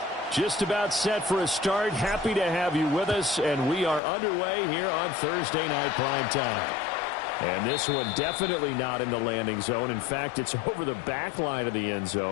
Just about set for a start. Happy to have you with us, and we are underway here on Thursday Night Prime Time. And this one definitely not in the landing zone. In fact, it's over the back line of the end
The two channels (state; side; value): drops out; right; at 4.0 s